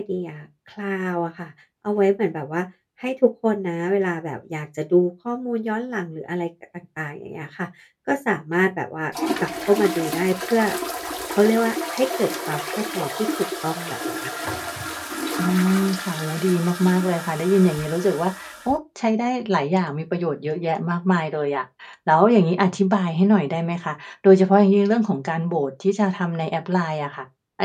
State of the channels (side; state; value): both; identical; correlation 1.00